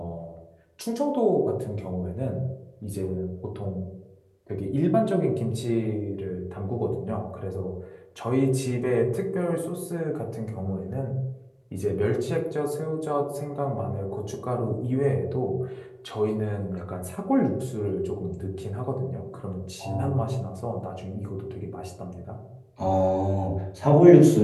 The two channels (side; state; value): both; identical; correlation 1.00